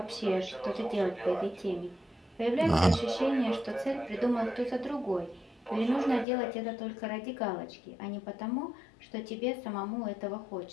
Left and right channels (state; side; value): drops out; right; at 6.2 s